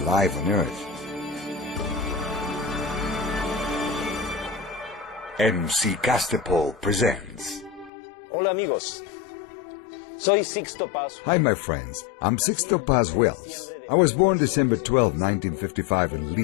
on Earth? MC Castepol presents. Hola amigos, soy Sixto Paz. Hi my friends, I'm Sixto Paz Wells. I was born December 12, 1955 in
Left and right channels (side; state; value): right; drops out; at 7.9 s